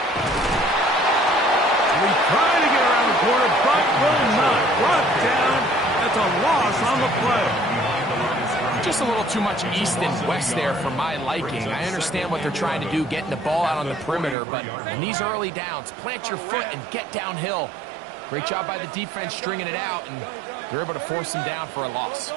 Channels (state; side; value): drops out; left; at 14.4 s